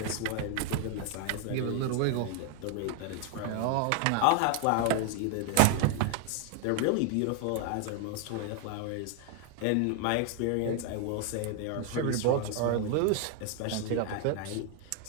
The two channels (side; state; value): both; different; correlation 0.00